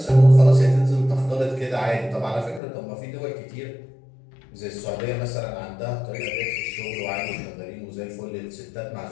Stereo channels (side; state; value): right; drops out; at 2.6 s